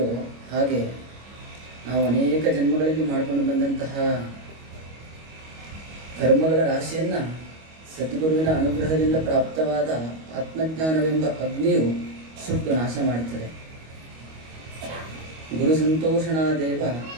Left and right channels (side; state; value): left; late; 25 ms